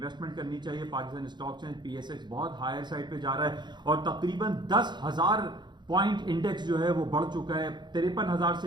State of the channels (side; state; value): left; late; 0.21 ms